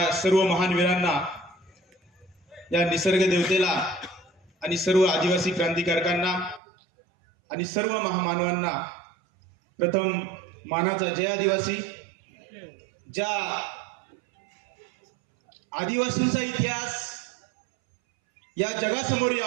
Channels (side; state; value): left; drops out; at 6.6 s